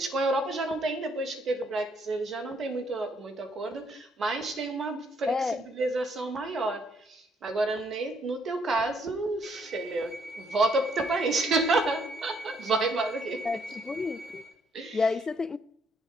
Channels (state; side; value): normal; both; correlation 0.69